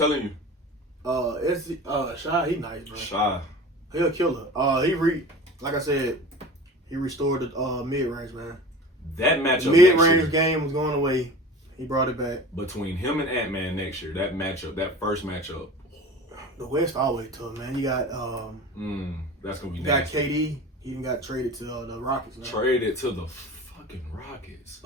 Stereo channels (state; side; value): normal; both; correlation 0.37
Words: you. Shy, he nice, bro. Shy. He a killer. Like I said, he restored the mid range, man. That matchup. Mid range game was going away. He brought it back. Between him and Ant-Man next year, that matchup, that first matchup. The West always tough, man. You got that's gonna be you nasty. got KD. He even got traded to the Rockets. Now. Traded to the fucking Rockets.